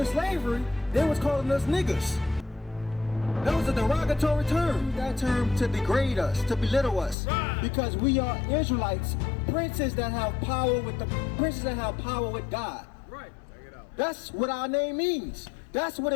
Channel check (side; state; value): right; drops out; at 7.2 s